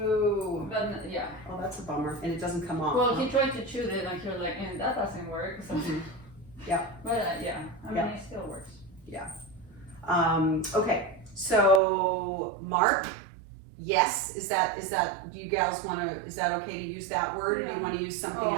But yeah. Oh, that's a bummer. And it doesn't come off. Well, he tried to chew it and he was like, and that doesn't work. So. Yeah. But yeah, I mean, it still works. Yeah. Okay. So Mark, yes. Is that? Do you gals want to? Is that okay to use that word? Or do you want to use something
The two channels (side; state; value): left; drops out; at 11.8 s